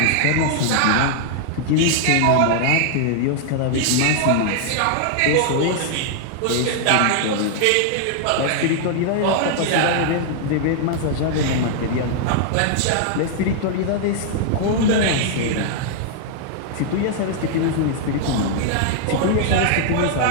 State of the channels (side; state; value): both; different; correlation -0.01